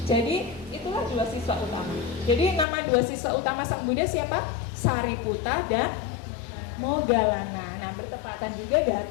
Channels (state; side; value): drops out; right; at 2.7 s